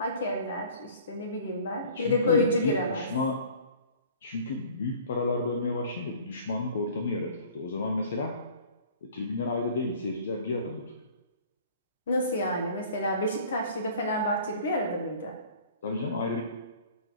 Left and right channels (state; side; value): inverted; both; correlation -0.48